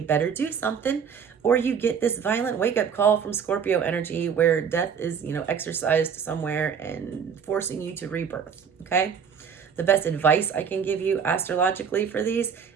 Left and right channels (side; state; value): left; quieter; 6.9 dB